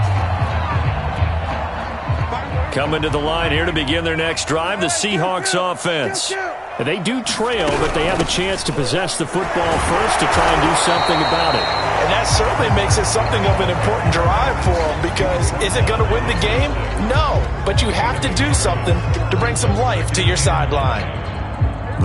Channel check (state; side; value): identical; both; correlation 1.00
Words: Coming to the line here to begin their next drive, the Seahawks offense. They do trail, but they have a chance to possess the football first to try and do something about it. And that certainly makes it something of an important drive for them, because is it going to win the game? No, but you have to do something to bring some life to your sideline.